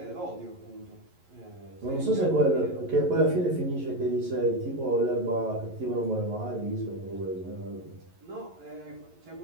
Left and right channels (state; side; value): late; left; 11 ms